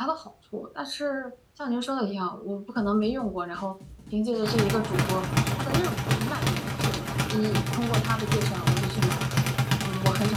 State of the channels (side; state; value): both; identical; correlation 1.00